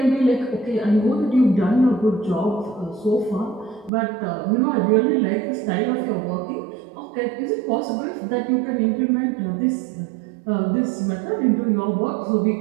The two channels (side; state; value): left; drops out; at 3.9 s